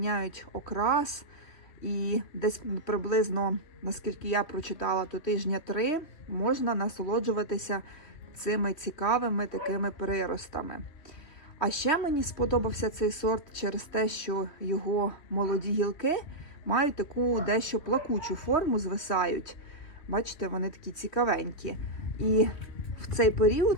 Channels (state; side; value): late; right; 3.1 ms